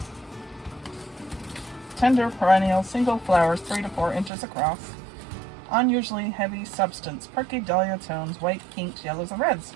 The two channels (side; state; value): left; drops out; at 4.3 s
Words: Tender perennial single flowers 3 to 4 inches across. Unusually heavy substance, perky dahlia tones, white, pinks, yellows, and reds.